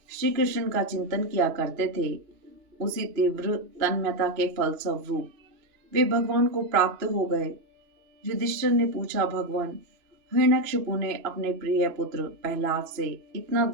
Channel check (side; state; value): left; late; 2.9 ms